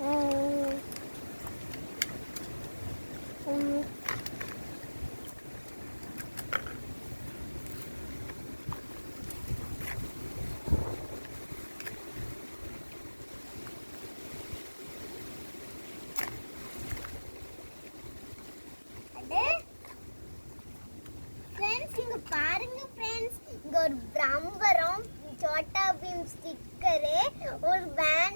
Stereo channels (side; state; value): both; inverted; correlation -1.00